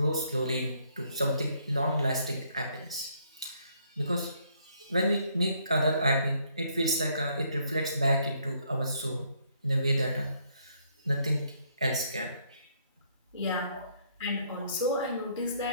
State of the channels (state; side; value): inverted; both; correlation -0.69